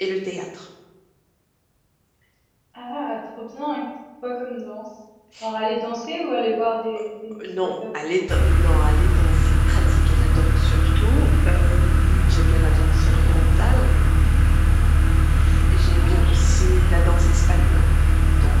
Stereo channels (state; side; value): identical; both; correlation 1.00